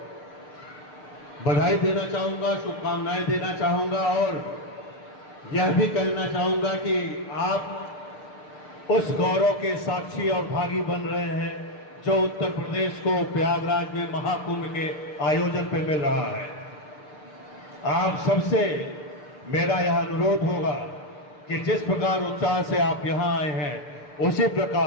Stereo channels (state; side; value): late; right; 6.6 ms